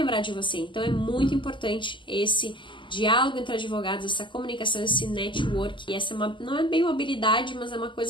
de você. Então é muito importante esse diálogo entre advogados, essa comunicação, esse network. E essa não é bem uma habilidade, mas é uma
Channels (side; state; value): right; late; 0.24 ms